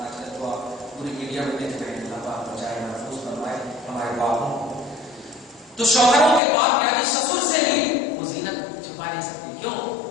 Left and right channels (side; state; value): right; drops out; at 6.4 s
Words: آج کل تو آپ پوری میڈیا میں دیکھ رہے ہیں، اللہ پاک بچائے محفوظ فرمائے ہمارے باپوں کو. تو شوہروں کے باپ یعنی سسر سے بھی وہ زینت چھپا نہیں سکتی. کیوں؟